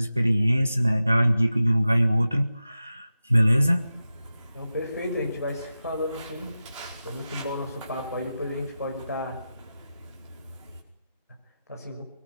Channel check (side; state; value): both; inverted; correlation -0.93